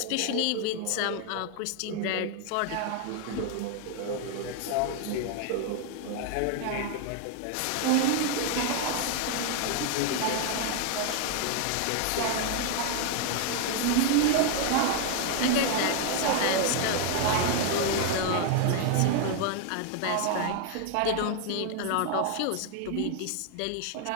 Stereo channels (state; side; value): different; both; correlation 0.00